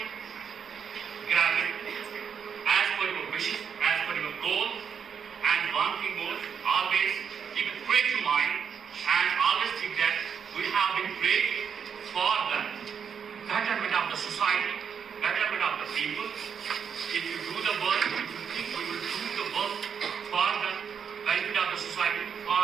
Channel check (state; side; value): quieter; left; 7.2 dB